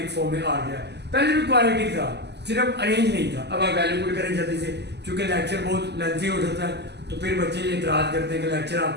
फॉर्म में आ गया। पहले भी क्वाड्रेटिक था, सिर्फ अरेंज नहीं था। अब आप वैल्यू पुट करें जल्दी से, क्योंकि लेक्चर बहुत लेंथी हो जाता है, तो फिर बच्चे ये इतराज करते हैं कि लेक्चर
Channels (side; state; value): left; late; 0.50 ms